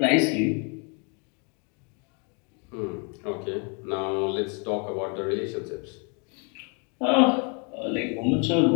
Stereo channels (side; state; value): right; quieter; 35.4 dB